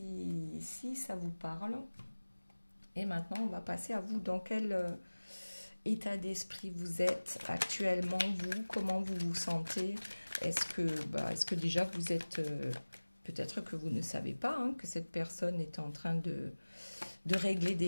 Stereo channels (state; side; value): inverted; both; correlation -1.00